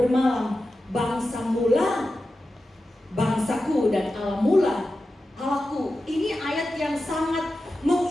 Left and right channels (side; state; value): both; normal; correlation 0.92